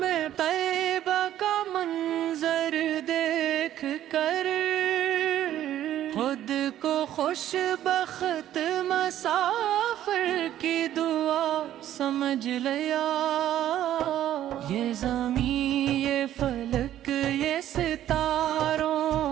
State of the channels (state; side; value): quieter; left; 12.2 dB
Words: طیبہ کا منظر دیکھ کر خود کو خوش بخت مسافر کی دعا سمجھ لیا۔ یہ زمین، یہ فلک، یہ